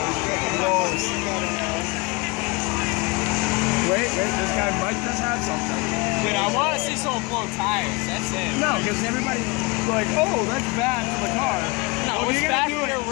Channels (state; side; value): quieter; right; 26.7 dB